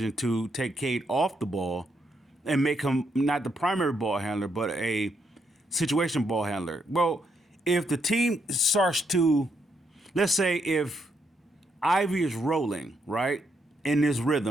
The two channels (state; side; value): normal; both; correlation 0.77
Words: to take Cade off the ball and make him not the primary ball handler, but a situation ball handler. Well, if the team starts to, let's say if Ivy is rolling, right, in this